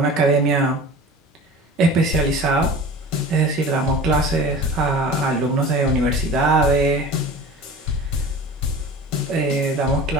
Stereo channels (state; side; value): normal; both; correlation 0.38